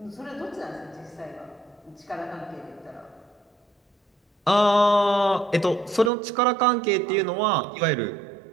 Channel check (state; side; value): drops out; left; at 6.1 s